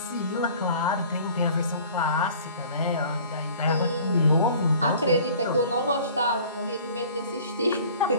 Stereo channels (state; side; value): inverted; both; correlation -0.48